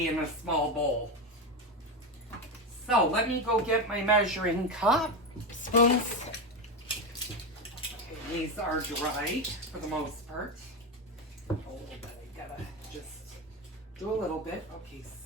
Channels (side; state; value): both; normal; correlation 0.15